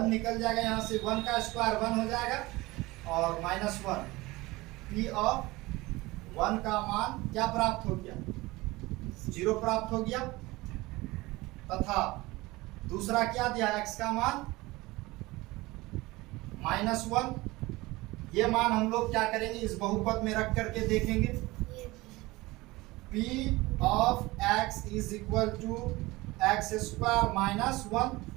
निकल जाएगा, यहाँ से 1 का स्क्वायर 1 हो जाएगा और -1, p ऑफ 1 का मान क्या प्राप्त हो गया, 0 प्राप्त हो गया, तथा दूसरा क्या दिया, x का मान -1, ये मान हम लोग क्या करेंगे, इस बहुपद में रख करके देखेंगे, p of x is equal to x square -1,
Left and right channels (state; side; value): quieter; left; 20.9 dB